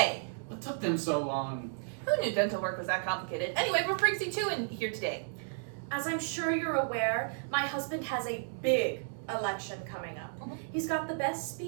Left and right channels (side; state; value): left; silent; digital silence